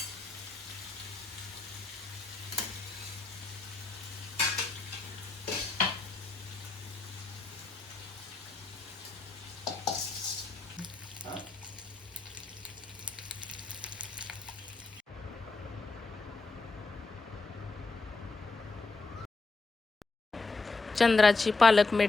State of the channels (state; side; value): quieter; right; 3.8 dB